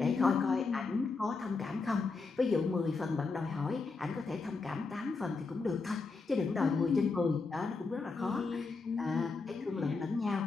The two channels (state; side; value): quieter; right; 4.2 dB